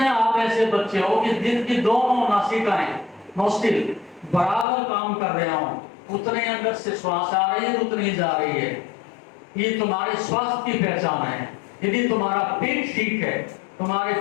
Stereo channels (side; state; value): right; drops out; at 4.7 s